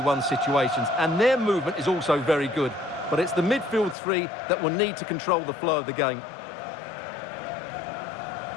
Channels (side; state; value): right; drops out; at 4.0 s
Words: situations, and their movement is also very good. But it's the midfield three that will need to control the flow of the game.